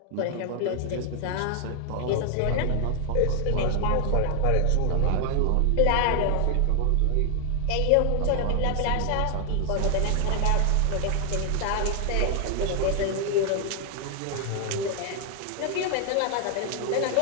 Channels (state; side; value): different; both; correlation 0.00